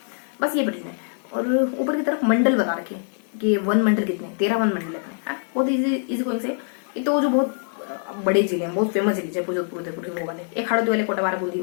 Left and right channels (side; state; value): right; silent; 57 dB below the other